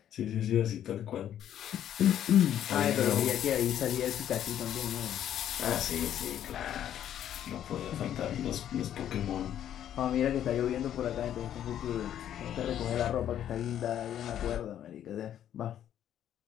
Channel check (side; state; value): right; quieter; 10.6 dB